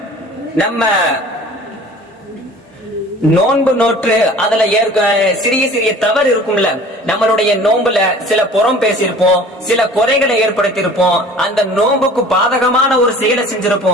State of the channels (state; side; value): normal; both; correlation 0.46